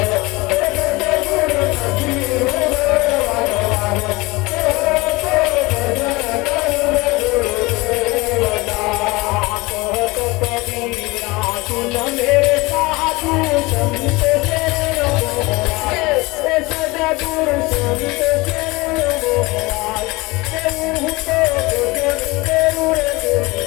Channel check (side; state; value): right; quieter; 22.9 dB